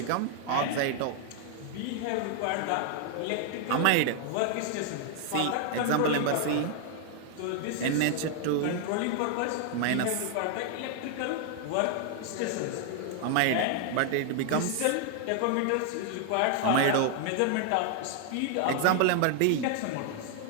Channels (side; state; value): both; different; correlation 0.00